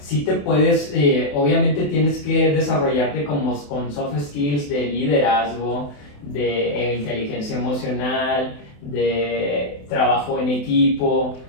te puedes, obviamente tienes que desarrollarte con soft skills de liderazgo, de inteligencia emocional, de trabajo en equipo,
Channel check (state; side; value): late; right; 28 ms